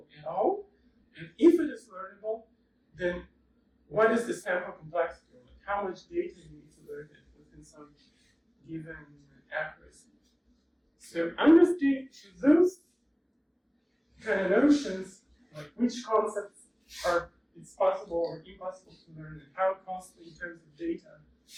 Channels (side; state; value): both; identical; correlation 1.00